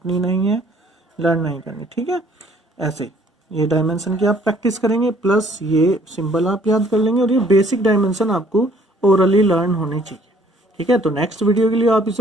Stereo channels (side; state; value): both; normal; correlation 0.60